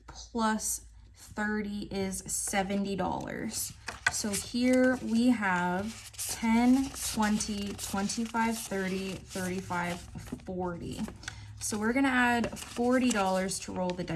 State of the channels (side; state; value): both; identical; correlation 1.00